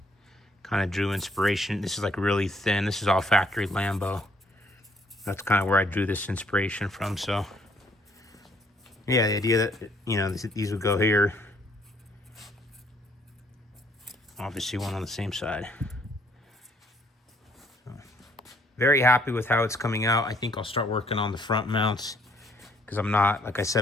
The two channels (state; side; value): normal; both; correlation 0.65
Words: Kind of drew inspiration. This is like really thin. This is all factory Lambo. That's kind of where I drew this inspiration from. So yeah, the idea that, you know, these would go here. Obviously one on the same side. So, very happy with how it's coming out. I think I'll start working on the front mounts because I'm not, like I